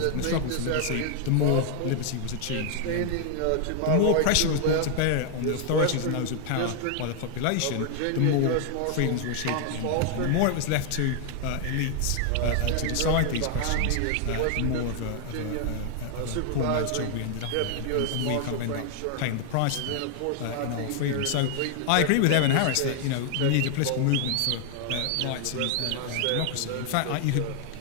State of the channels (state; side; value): different; both; correlation 0.00